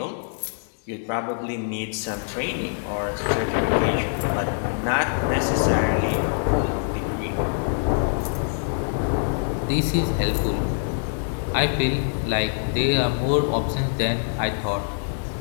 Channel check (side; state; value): right; silent; digital silence